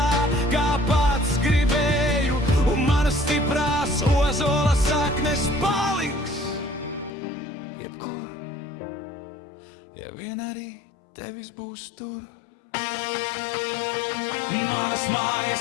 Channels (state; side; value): drops out; right; at 7.1 s